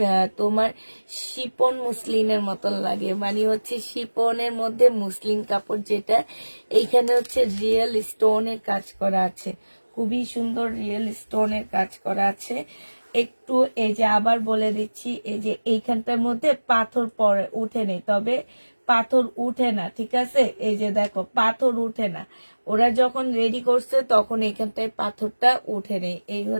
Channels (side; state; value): both; inverted; correlation -1.00